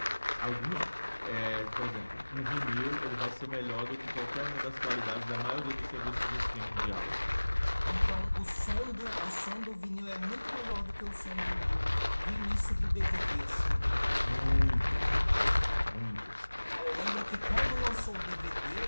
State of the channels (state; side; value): inverted; both; correlation -1.00